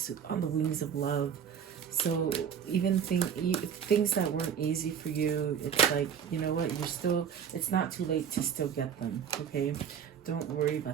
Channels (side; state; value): left; quieter; 8.0 dB